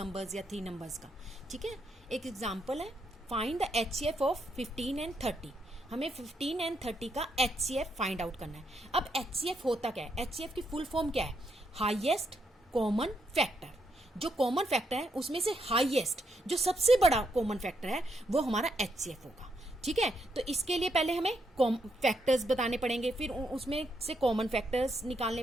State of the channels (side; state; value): both; normal; correlation 0.78